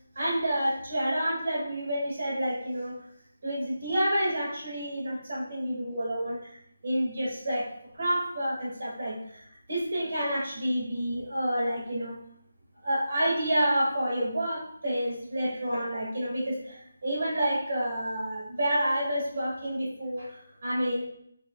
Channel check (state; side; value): inverted; both; correlation -0.89